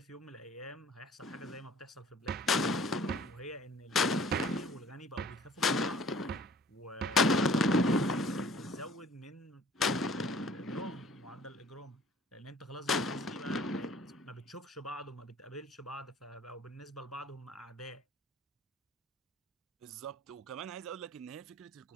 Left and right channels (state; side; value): normal; both; correlation 0.51